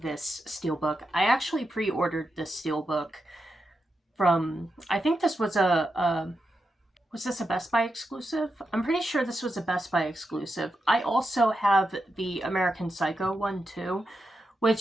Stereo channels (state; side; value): normal; both; correlation 0.87